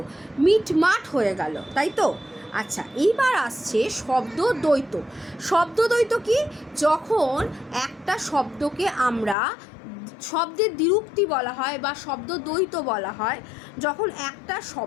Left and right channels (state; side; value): drops out; right; at 9.3 s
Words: মিট মাট হয়ে গেল, তাই তো? আচ্ছা, এইবার আসছে শব্দ দ্বৈত। শব্দ দ্বৈত কি? যখন একটা শব্দকে আমরা শব্দের দ্বিরুক্তি বলা হয় বা শব্দ দ্বৈত বলা হয়, যখন একটা